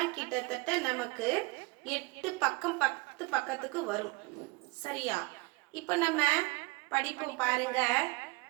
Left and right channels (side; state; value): left; quieter; 25.5 dB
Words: கிட்டத்தட்ட நமக்கு 8 பக்கம் 10 பக்கத்துக்கு வரும். சரியா? இப்போ நம்ம படிப்போம் பாருங்க.